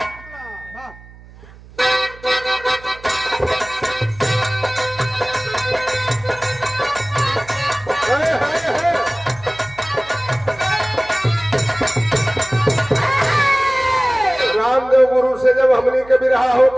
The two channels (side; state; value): right; noise; hum, 21 dB below the sound